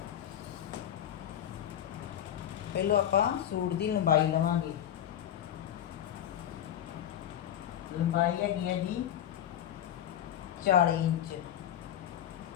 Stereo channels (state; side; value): quieter; right; 10.7 dB